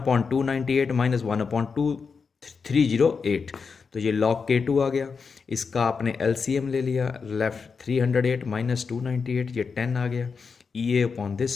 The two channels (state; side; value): quieter; right; 5.3 dB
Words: minus 1/2308, तो ये log k2 आ गया। इसका आपने LCM ले लिया, लेफ्ट 308 माइनस 298, ये 10 आ गया। ई ए अपॉन